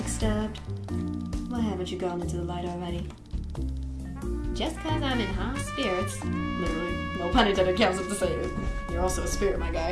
Why haven't you gone into the light already? Just because I'm in high spirits. Literally, no pun intended, counts up to say it. You're also a spirit, my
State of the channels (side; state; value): both; identical; correlation 1.00